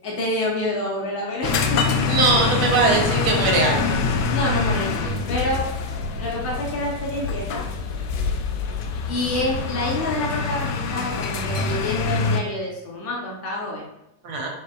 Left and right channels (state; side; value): late; left; 2.8 ms